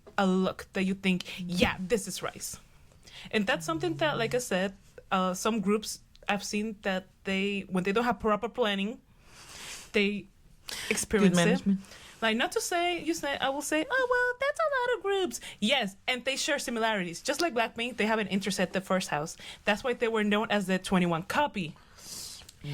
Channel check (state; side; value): identical; both; correlation 1.00